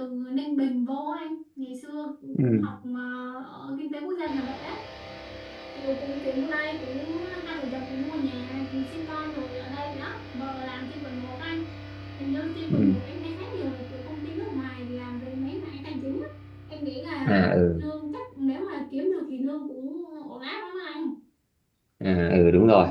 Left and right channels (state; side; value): identical; both; correlation 1.00